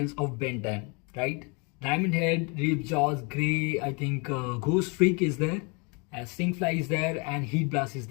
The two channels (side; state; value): right; quieter; 31.8 dB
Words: of Ben 10, right? Diamondhead, Ripjaws, Grey, I think Ghostfreak is there, Stinkfly is there and Heatblast is